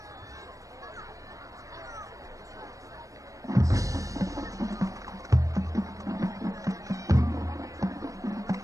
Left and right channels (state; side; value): late; left; 0.16 ms